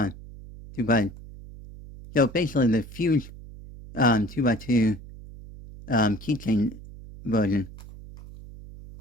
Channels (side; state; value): right; noise; hum, 16 dB below the sound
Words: so basically the fused 2x2 keychain version.